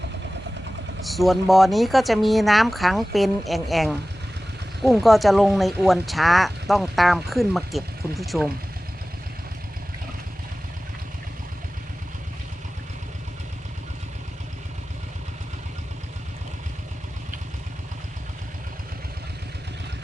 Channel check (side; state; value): both; normal; correlation 0.97